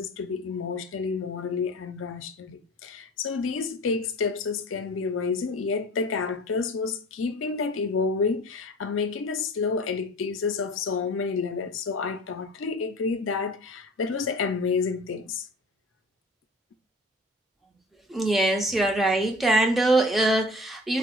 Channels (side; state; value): both; normal; correlation 0.41